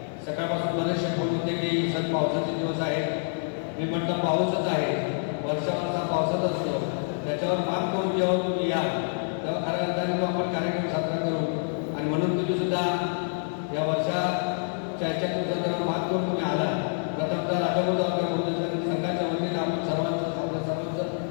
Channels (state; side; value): silent; right; digital silence